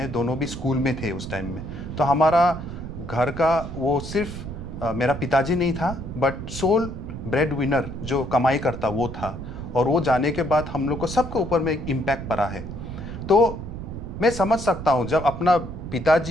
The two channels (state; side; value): noise; right; rumble, 9 dB below the sound